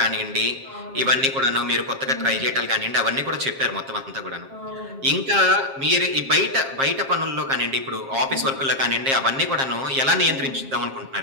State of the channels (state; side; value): late; left; 7.5 ms